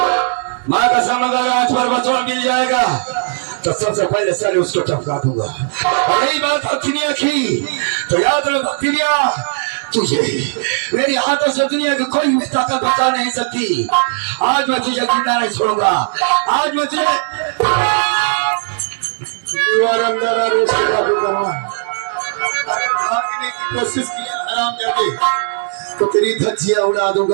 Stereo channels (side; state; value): left; silent; 63 dB below the other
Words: माँ कसम अगर आज पर बचवा मिल जाएगा तो सबसे पहले सारे उसको टपका दूंगा। और यही बात भक्तिनिया की तो याद रख भक्तिनिया, तुझे मेरे हाथों से दुनिया की कोई भी ताकत बचा नहीं सकती। आज मैं तुझे जिंदा नहीं छोड़ूंगा। आज मैं तुझे भागने की कोशिश की आराम जाके तो तेरी धज्जियां उड़ा